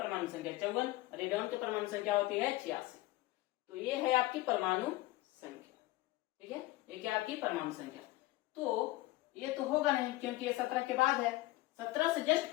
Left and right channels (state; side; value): quieter; right; 18.4 dB